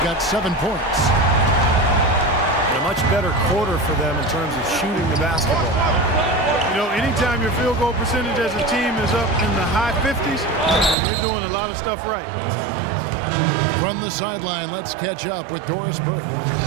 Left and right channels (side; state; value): left; drops out; at 11.0 s